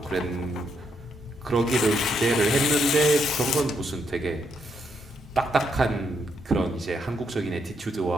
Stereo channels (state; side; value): normal; both; correlation 0.77